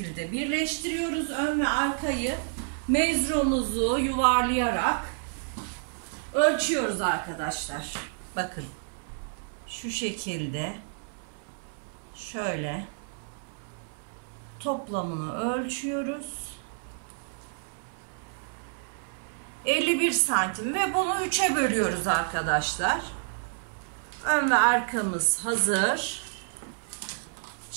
birleştiriyoruz. Ön ve arkayı mezromuzu yuvarlayarak ölçüyoruz arkadaşlar. Bakın şu şekilde şöyle toplamını ölçüyoruz. 51 santim ve bunu 3'e bölüyoruz arkadaşlar. Ön ve arkamız hazır.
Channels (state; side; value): silent; left; 58 dB below the other